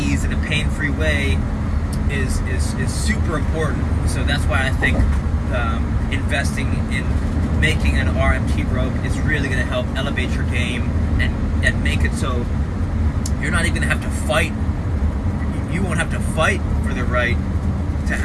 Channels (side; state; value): both; identical; correlation 1.00